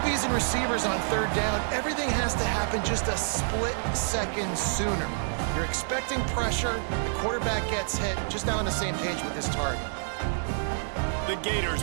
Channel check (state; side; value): silent; left; 59 dB below the other